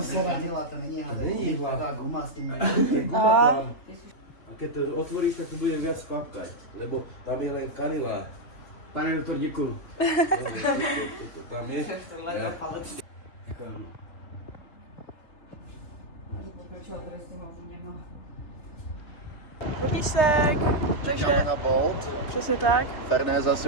se radila, to není hada. Není hla. Ta guma s tím. A keď to otvoríš, tak to bude viac klapkať, lebo tam je len kanila. Pane doktor, děkuju. Tam je. Vodíšek. Čekáme na Bolt. Přesně tak. Ferné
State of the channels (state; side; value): late; right; 3.2 ms